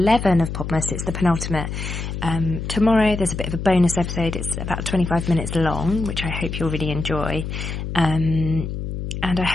of Podmas. It's the penultimate. Tomorrow there's a bit of a bonus episode. It's about 25 minutes long, which I hope you'll really enjoy. And I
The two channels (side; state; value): left; noise; hum, 5 dB below the sound